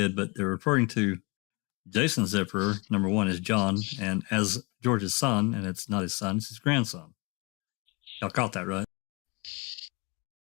but they're referring to Jason Zipperer. Number one is John, and as George's son, and it's not his son, it's his grandson. Y'all caught that, right?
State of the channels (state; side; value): quieter; right; 28.7 dB